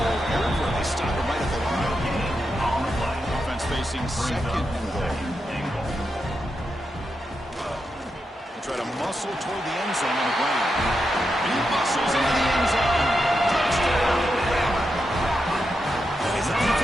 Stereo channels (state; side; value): normal; both; correlation 0.86